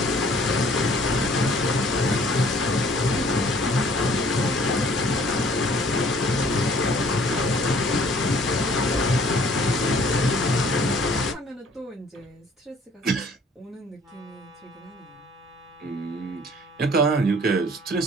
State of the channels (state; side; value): normal; both; correlation 0.56